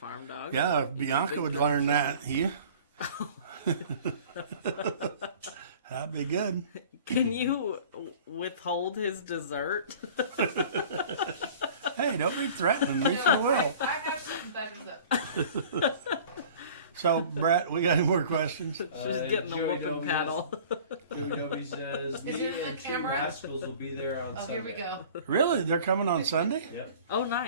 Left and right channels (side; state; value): both; inverted; correlation -0.45